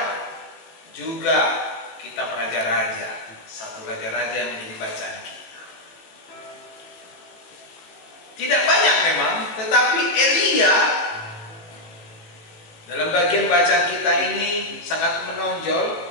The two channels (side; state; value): right; late; 18 ms